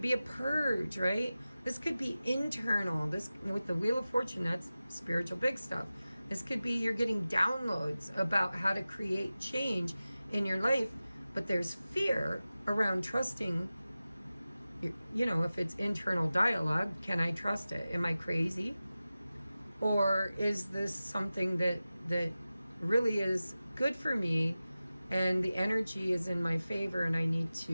be a purge, right? This could be internal. This, with the Wheel of Fortune, that's spiritual big stuff. This could be you're getting downloads about how to create change in your life, but there's fear around trusting. You know, if it's internal dialogue, can I trust it? Am I crazy? Or is this something that really is good for me and the energy is in my favor and I need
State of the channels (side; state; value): both; inverted; correlation -0.95